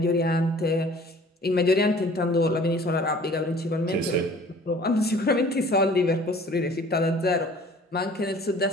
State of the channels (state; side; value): normal; both; correlation 0.50